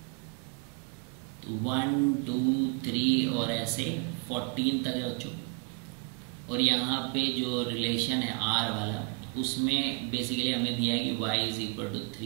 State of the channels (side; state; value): left; quieter; 33.5 dB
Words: 1 2 3 और ऐसे 14 तक है बच्चों। और यहाँ पे जो रिलेशन है R वाला, उसमें बेसिकली हमें दिया है कि y is equal to